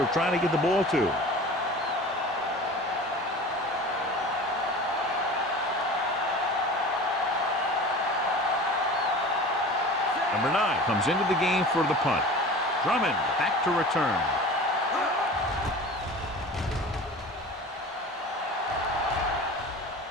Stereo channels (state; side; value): normal; both; correlation 0.38